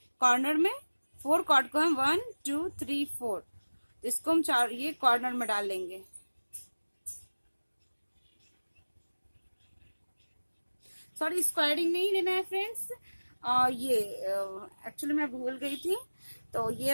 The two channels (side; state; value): both; inverted; correlation -1.00